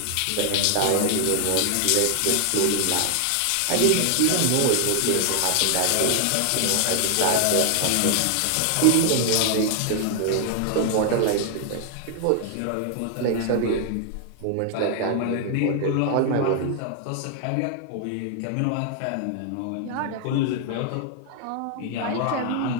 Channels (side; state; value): both; different; correlation 0.00